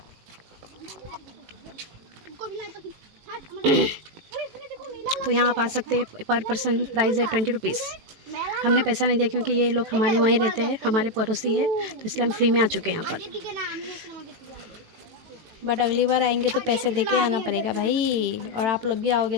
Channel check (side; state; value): left; late; 18 ms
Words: तो यहाँ आप आ सकते हैं। पर पर्सन प्राइस है 20 रुपीज़। हमने पैसा नहीं दिया क्योंकि ये लोग हमारे वहीं रहते हैं, हमारे पड़ोसी है, तो इसलिए हम फ्री में आ चुके हैं यहाँ पर। बट अगली बार आएंगे तो पैसे दे के आना पड़ेगा भाई, और आप लोग भी आओगे